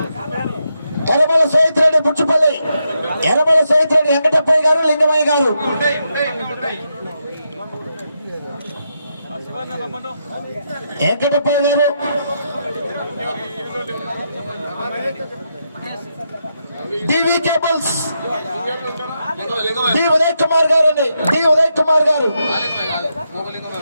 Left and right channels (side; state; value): both; inverted; correlation -0.83